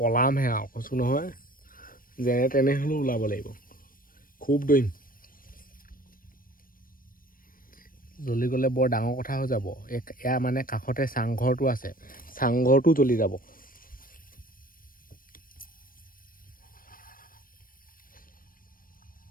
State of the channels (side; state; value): right; late; 0.41 ms